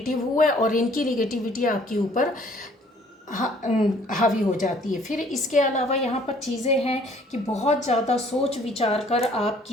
हुए और इनकी निगेटिविटी आपके ऊपर हावी हो जाती है। फिर इसके अलावा यहाँ पर चीज़ें हैं कि बहुत ज़्यादा सोच विचार कर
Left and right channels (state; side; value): normal; both; correlation 0.58